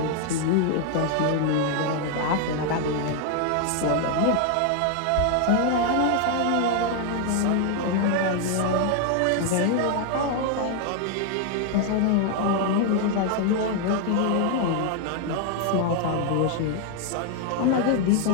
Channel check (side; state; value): both; different; correlation 0.00